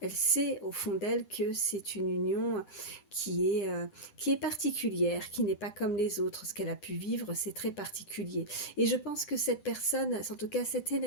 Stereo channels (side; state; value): right; late; 10 ms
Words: Elle sait au fond d'elle que c'est une union qui est particulière, qui n'est pas comme les autres. Ce qu'elle a pu vivre, c'est très particulier. Et je pense que cette personne, en tout cas cette